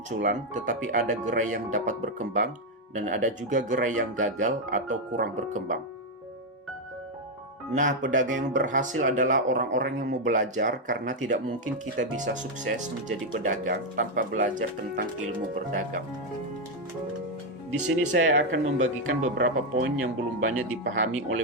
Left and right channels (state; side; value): normal; both; correlation 0.03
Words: tetapi ada gerai yang dapat berkembang, dan ada juga gerai yang gagal atau kurang berkembang. Nah, pedagang yang berhasil adalah orang-orang yang mau belajar, karena tidak mungkin kita bisa sukses menjadi pedagang tanpa belajar tentang ilmu berdagang. Di sini saya akan membagikan beberapa poin yang belum banyak dipahami oleh